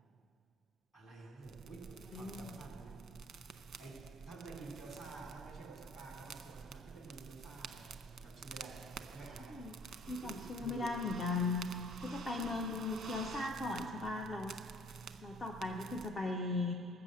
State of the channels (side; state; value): both; normal; correlation 0.54